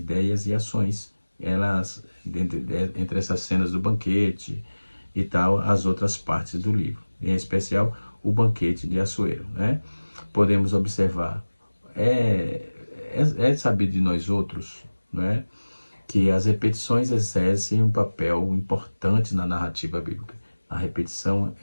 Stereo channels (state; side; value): inverted; both; correlation -1.00